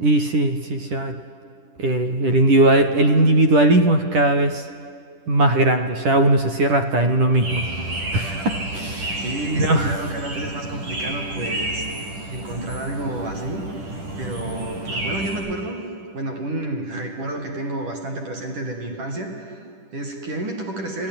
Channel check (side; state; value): left; late; 10 ms